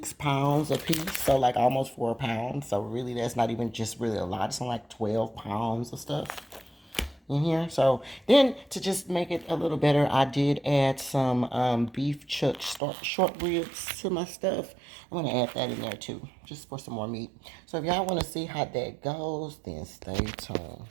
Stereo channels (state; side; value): drops out; left; at 12.8 s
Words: pounds a piece, so like almost 4 pounds. So really that's not even just really a lot. It's only like 12 pounds of stuff in here. So then to just make it a little better, I did add some beef chuck short ribs to my stuff. I'm gonna add that in there too, just for some more meat. So if y'all want to see how that goes, then stay tuned.